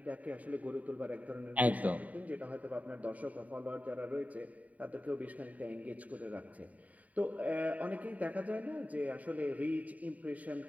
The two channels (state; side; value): late; left; 0.071 ms